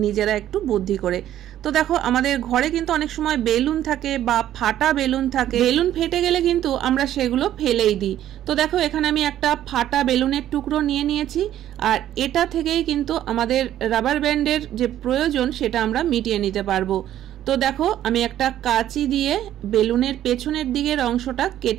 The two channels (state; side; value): quieter; left; 12.1 dB